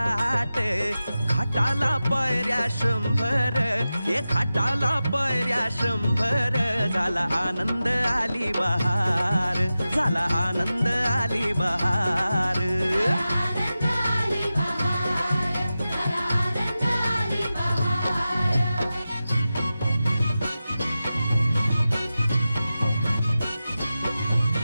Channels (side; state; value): both; inverted; correlation -0.94